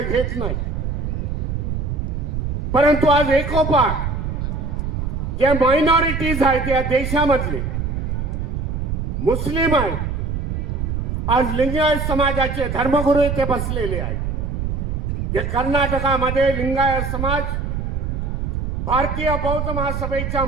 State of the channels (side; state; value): right; noise; rumble, 2 dB below the sound